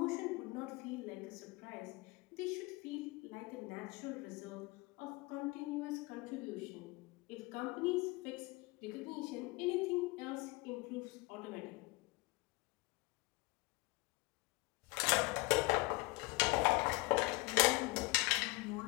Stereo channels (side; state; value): right; quieter; 23.9 dB